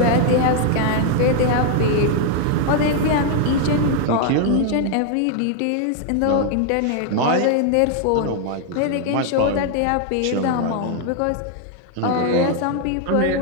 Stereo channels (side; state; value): both; different; correlation 0.00